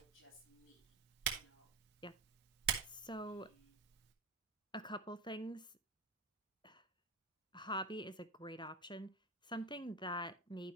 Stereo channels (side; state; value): left; quieter; 3.6 dB